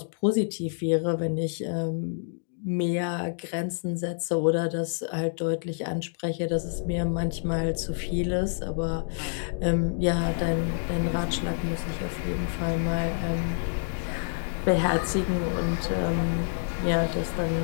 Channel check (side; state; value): right; silent; digital silence